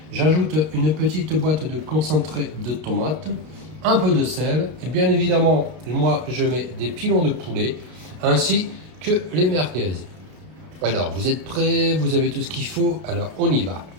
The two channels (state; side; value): late; left; 32 ms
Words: J'ajoute une petite boîte de concentré de tomate, un peu de sel et bien évidemment moi je mets des pilons de poulet ainsi que les merguez. Alors vous êtes prêts, vous avez tout ce qu'il faut, alors on y va.